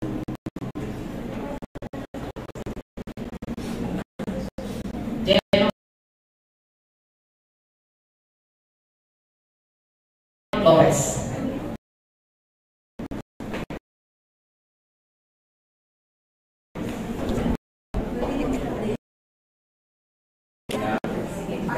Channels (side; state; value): both; identical; correlation 1.00